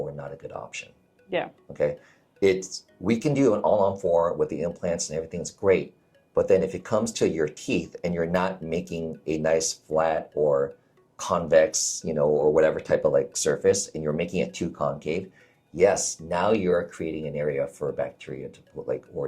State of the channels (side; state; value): both; identical; correlation 1.00